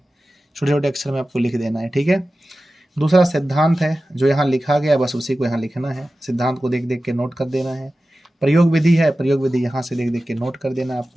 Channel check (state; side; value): normal; both; correlation 0.95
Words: छोटे छोटे अक्षर में आपको लिख देना है, ठीक है। दूसरा सिद्धांत है, जो यहाँ लिखा गया बस उसी को यहाँ लिखना है, सिद्धांत को देख देख के नोट कर देना है। प्रयोग विधि है, प्रयोग विधि यहाँ से देख देख के नोट कर देना है